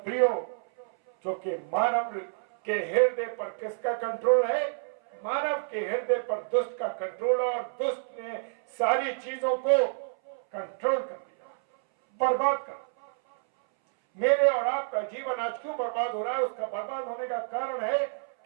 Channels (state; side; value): silent; left; 59 dB below the other